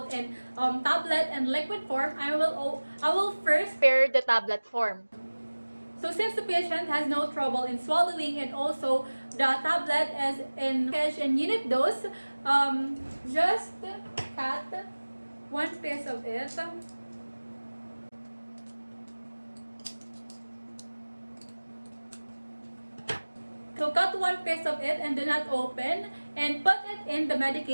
in tablet and liquid form, I will first prepare the tablet form. So since the patient has no trouble in swallowing and also the tablet is in package and unit dose, just cut 1 piece of it. So cut 1 piece of it and do not open, and put it in the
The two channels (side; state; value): both; inverted; correlation -1.00